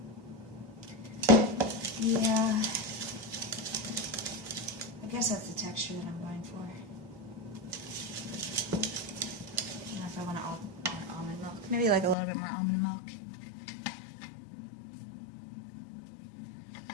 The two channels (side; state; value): right; drops out; at 12.2 s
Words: Yeah, I guess that's the texture that I'm going for. I don't know if I want almond milk. Maybe like a little bit more almond milk.